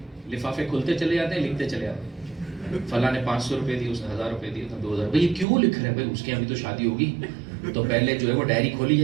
لفافے کھلتے چلے جاتے ہیں, لکھتے چلے جاتے ہیں. فلاں نے 500 روپے دی, اس نے 1000 روپے دیے, 2000. بھائی کیوں لکھ رہے ہیں بھائی, اس کے یہاں بھی تو شادی ہوگی تو پہلے جو ہے وہ ڈائری کھولی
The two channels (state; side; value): drops out; left; at 5.5 s